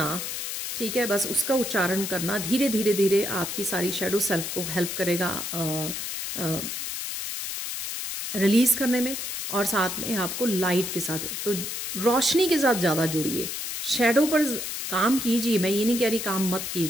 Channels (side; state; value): left; noise; hiss, 5 dB below the sound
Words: ठीक है। बस उसका उच्चारण करना धीरे धीरे धीरे आपकी सारी शैडो सेल्फ को हेल्प करेगा रिलीज़ करने में, और साथ में आपको लाइट के साथ, तो रोशनी के साथ ज़्यादा जुड़िए। शैडो पर काम कीजिए, मैं ये नहीं कह रही काम मत